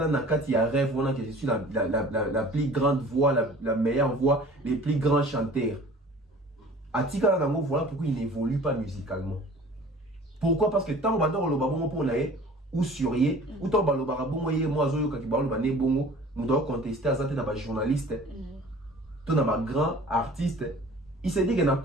na kati ya rêve voilà que je suis la plus grande voix, la meilleure voix, les plus grands chanteurs. Atika na voilà pourquoi il n'évolue pas musicalement. Pourquoi? Parce que tant on va dans le babon pour l'air ou surier ou tant balo barabongo ye moi zoyo ka kibalo ba ne bongo on doit contester à ça na ba journaliste to na ba grand artiste il s'est dit que na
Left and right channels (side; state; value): both; normal; correlation 0.46